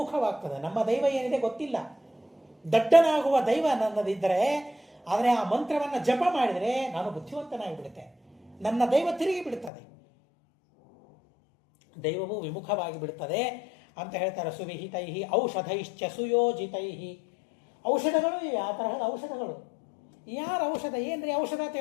ನಮ್ಮ ದೈವ ಏನಿದೆ ಗೊತ್ತಿಲ್ಲ, ದಡ್ಡನಾಗುವ ದೈವ ನನ್ನದಿದ್ದರೆ, ಆದರೆ ಆ ಮಂತ್ರವನ್ನು ಜಪ ಮಾಡಿದರೆ ನಾನು ಬುದ್ಧಿವಂತನಾಗಿ ಬಿಡುತ್ತೆ, ನನ್ನ ದೈವ ತಿರುಗಿ ಬಿಡುತ್ತದೆ, ದೈವವು ವಿಮುಖವಾಗಿ ಬಿಡುತ್ತದೆ ಅಂತ ಹೇಳ್ತಾರೆ. ಸುವಿಹಿತೈ ಔಷಧೈಶ್ಚ ಸುಯೋಜಿತೈ, ಔಷಧಗಳು ಇವೆ, ಆ ತರಹದ ಔಷಧಗಳು. ಯಾರ ಔಷಧ ಏನ್ರಿ ಔಷಧ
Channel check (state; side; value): drops out; right; at 9.7 s